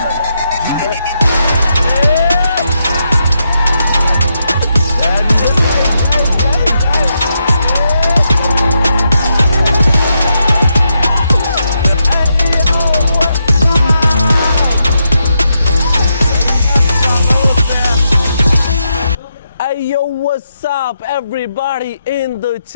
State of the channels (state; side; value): inverted; both; correlation -0.82